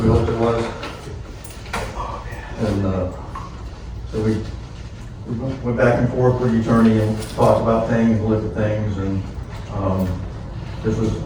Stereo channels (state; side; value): identical; both; correlation 1.00